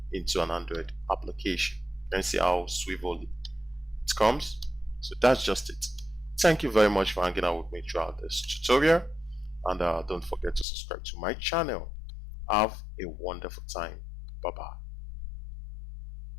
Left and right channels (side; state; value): right; drops out; at 10.7 s